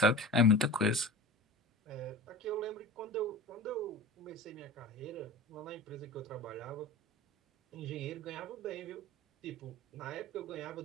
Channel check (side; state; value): both; normal; correlation 0.34